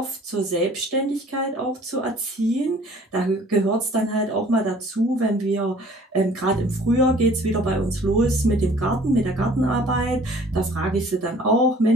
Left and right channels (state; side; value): normal; both; correlation 0.53